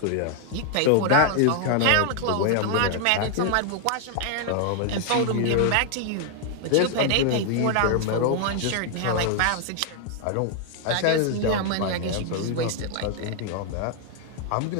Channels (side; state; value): both; different; correlation 0.00